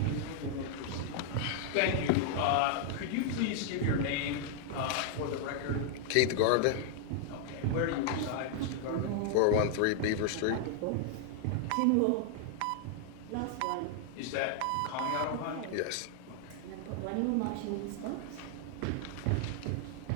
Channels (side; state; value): both; different; correlation 0.00